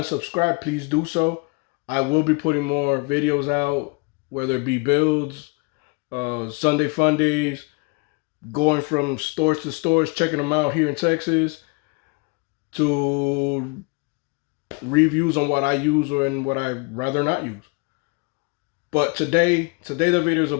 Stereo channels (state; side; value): quieter; right; 30.3 dB